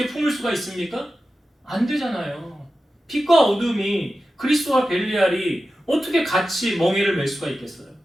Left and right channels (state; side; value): normal; both; correlation 0.93